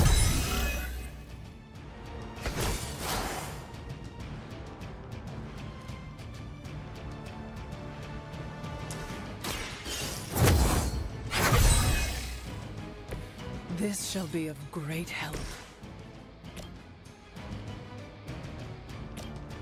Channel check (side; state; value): both; identical; correlation 1.00